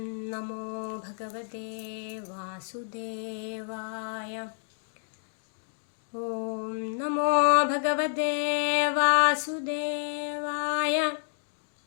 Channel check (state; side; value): silent; right; digital silence